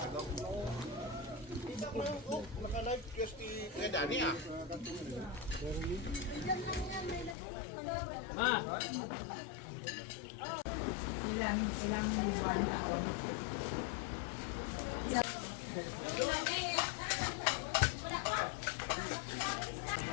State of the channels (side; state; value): right; drops out; at 7.4 s